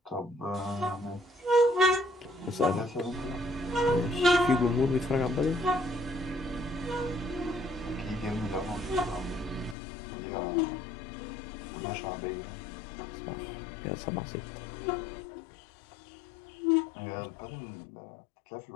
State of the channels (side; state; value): right; drops out; at 9.8 s